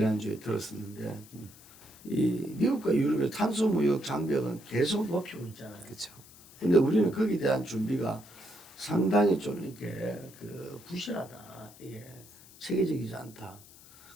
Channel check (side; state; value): left; noise; hiss, 22 dB below the sound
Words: 들었었는데 이 미국과 유럽의 탄소 무역 장벽은 계속 높이고 있잖아요. 그렇죠. 근데 우리는 거기에 대한 준비가 상당히 좀 이렇게 부실하다. 이게 체계적이지 않다.